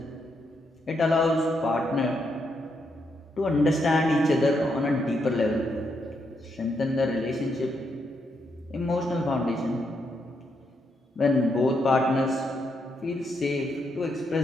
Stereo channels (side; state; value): both; normal; correlation 0.79